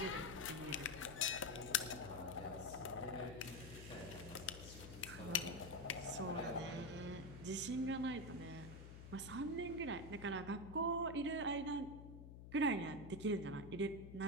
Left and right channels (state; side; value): noise; left; hum, 12 dB below the sound